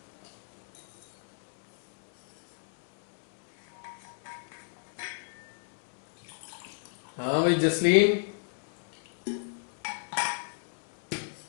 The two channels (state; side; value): silent; right; digital silence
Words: हाँ भाई जसलीन।